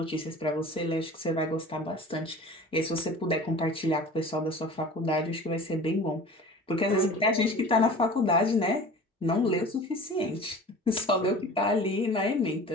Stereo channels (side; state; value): both; normal; correlation 0.41